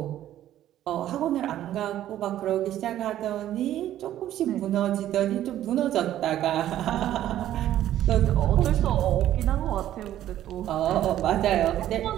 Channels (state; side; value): quieter; left; 12.4 dB